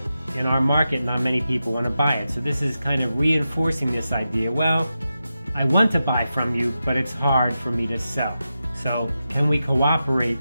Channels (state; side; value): inverted; both; correlation -0.90